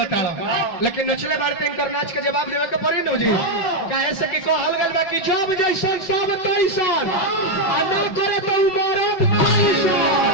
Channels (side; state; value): right; late; 5.3 ms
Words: लेकिन नचले बारते इनकर नाच के जवाब देवे के पड़ी न जी काहे से कि कहल गल बा कि जब जैसन सब तैसन आ ना करे तो मरद